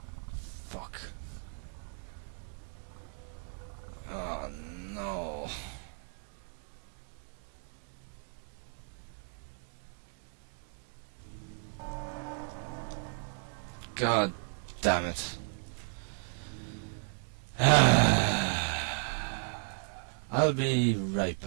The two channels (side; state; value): left; silent; 55 dB below the other